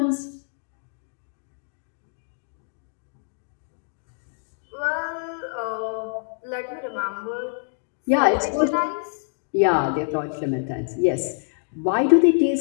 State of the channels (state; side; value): silent; right; digital silence